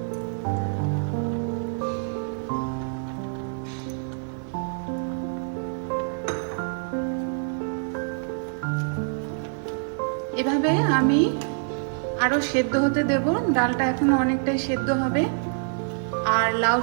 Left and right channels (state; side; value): silent; left; digital silence